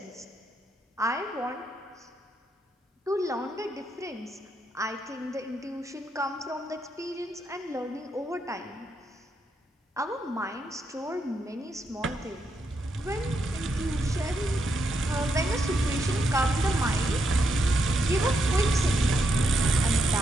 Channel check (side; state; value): both; normal; correlation 0.80